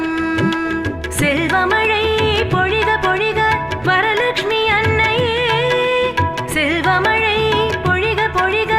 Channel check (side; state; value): left; noise; rumble, 24 dB below the sound